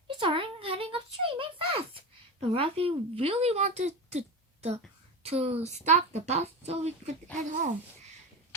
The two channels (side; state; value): both; normal; correlation 0.23